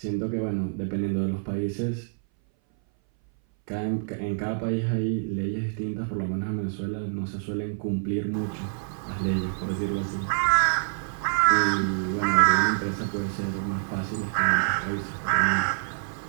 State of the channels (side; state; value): left; silent; 59 dB below the other